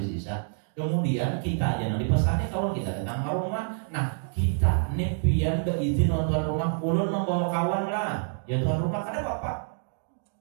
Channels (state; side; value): silent; left; digital silence